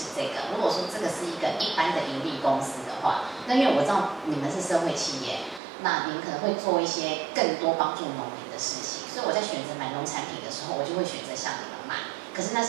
这个。如果说这个是一个一般的盈利公司的话，那因为我知道你们是社会企业，那你们可能会做一些更多帮助农民的事情，所以我在选择买农产品的时候，我就会选择向你们买。可是那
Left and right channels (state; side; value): drops out; left; at 5.6 s